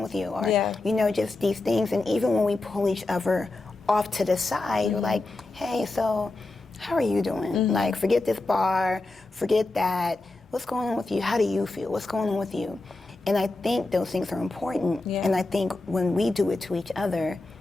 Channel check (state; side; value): quieter; right; 3.1 dB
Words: with you? Or, you know, just these things. And even when we pull each other off to the side, we're like, hey, so how are you doing? Like, forget this bar, forget that. What's going on with you? How do you feel? What's going on with you? And I think those things are important. Yeah. And I think when we do it to each other,